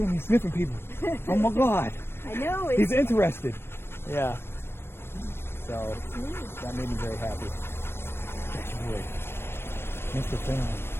him, he's sniffing people. Oh my God. I know. He's interested. Yeah. So neat. that made me very happy. That's weird. Mr. Finley.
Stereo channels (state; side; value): late; right; 0.12 ms